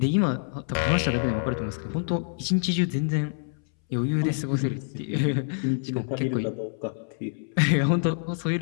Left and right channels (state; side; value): silent; right; 61 dB below the other